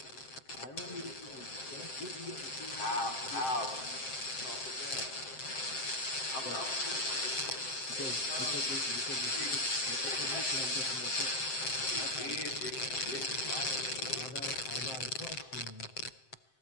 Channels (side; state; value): right; late; 7.6 ms